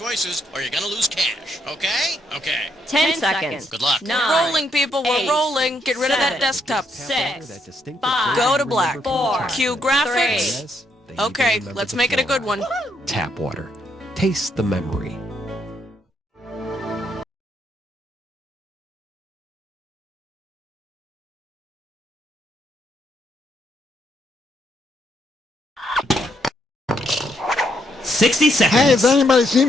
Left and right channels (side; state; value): both; normal; correlation 0.75